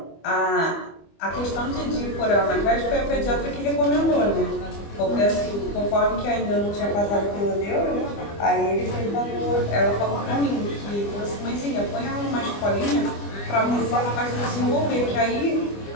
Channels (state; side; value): late; right; 25 ms